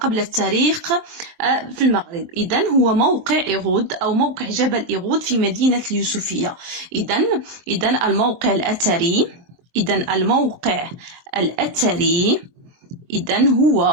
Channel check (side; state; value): left; late; 23 ms